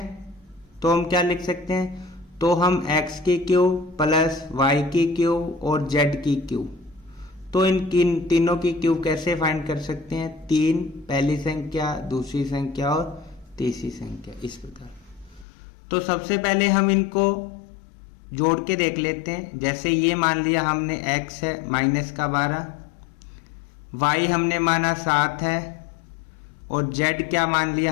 हैं, तो हम x की क्यूब प्लस y की क्यूब और z की क्यूब, तो इन तीनों की क्यूब कैसे फाइंड कर सकते हैं? 3 पहली संख्या, दूसरी संख्या और तीसरी संख्या, इस प्रकार। तो सबसे पहले हम इनको जोड़ के देख लेते हैं। जैसे ये मान लिया हमने x है -12, y हमने माना 7 है और z क्या मान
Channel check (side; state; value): right; drops out; at 15.5 s